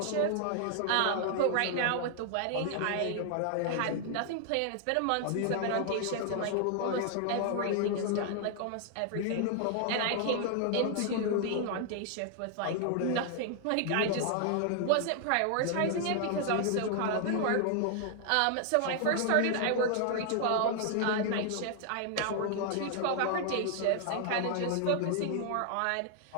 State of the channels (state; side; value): different; both; correlation 0.00